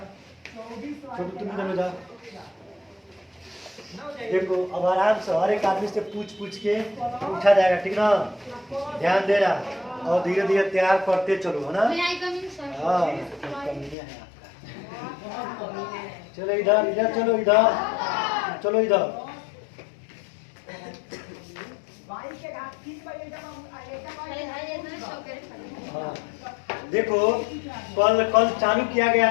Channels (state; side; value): drops out; right; at 14.0 s